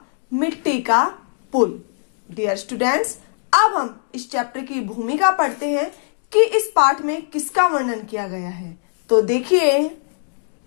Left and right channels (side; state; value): right; silent; digital silence